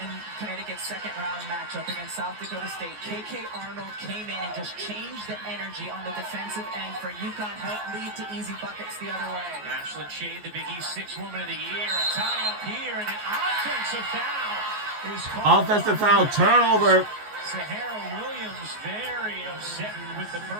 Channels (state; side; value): late; left; 14 ms